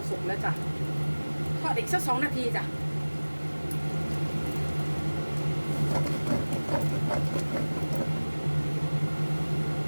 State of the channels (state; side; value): inverted; both; correlation -1.00